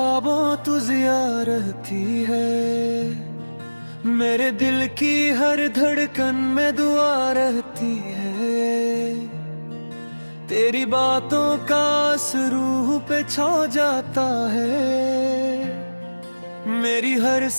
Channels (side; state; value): both; inverted; correlation -1.00